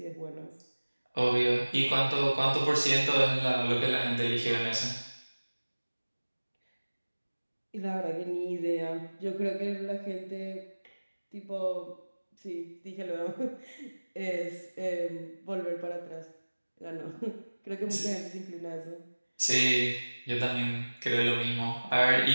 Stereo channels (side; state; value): both; inverted; correlation -1.00